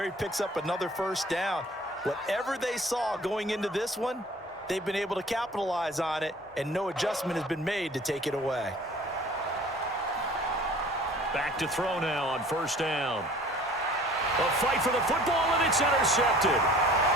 he picks up another first down. Whatever they saw going into this one, they've been able to capitalize on it, and no adjustment has been made to take it away. Back to throw now on first down. A fight for the football, and it's intercepted.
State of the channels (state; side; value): normal; both; correlation 0.49